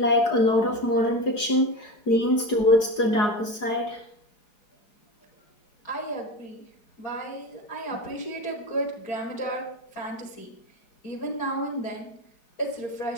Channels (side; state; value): right; late; 4.8 ms